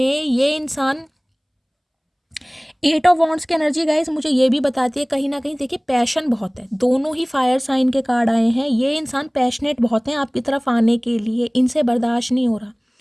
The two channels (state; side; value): identical; both; correlation 1.00